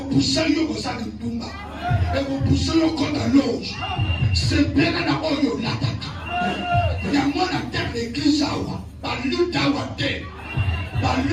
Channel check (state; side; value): identical; both; correlation 1.00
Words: puso yo kosala ndumba eko puso yo kota loge sepena na oyo lataka yango na terre d'église awa baluta awa te